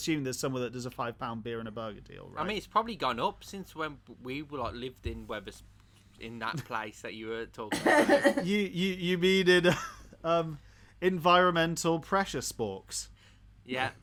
there's somewhere that does a £5 beer and a burger deal, right? I mean, it's probably gone up since when we were lived in in that place that you were talking about. you mean in environmental pressure sporks? Yeah.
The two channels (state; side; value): identical; both; correlation 1.00